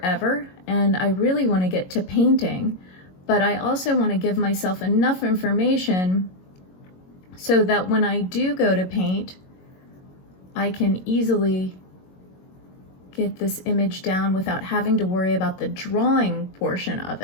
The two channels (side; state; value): right; late; 22 ms